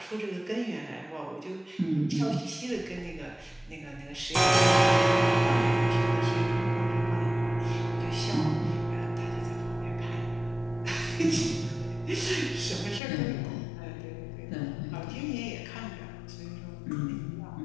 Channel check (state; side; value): drops out; right; at 13.0 s